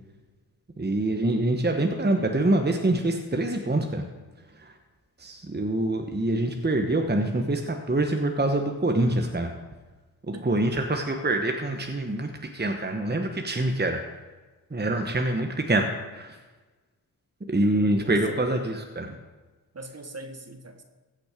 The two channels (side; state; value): both; normal; correlation 0.55